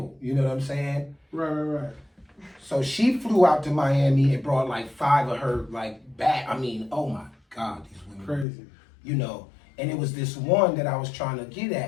you know what I'm saying? Right. So she flew out to Miami and brought like 5 of her like back. I mean, oh my God, these women. Crazy. You know, and it was this one that I was trying to get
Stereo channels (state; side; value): drops out; right; at 8.5 s